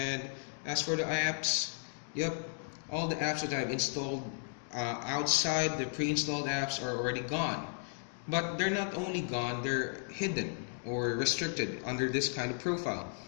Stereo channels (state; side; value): silent; right; digital silence